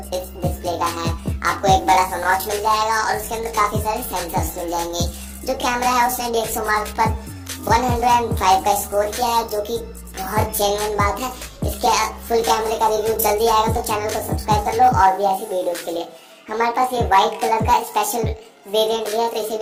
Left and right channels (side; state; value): both; identical; correlation 1.00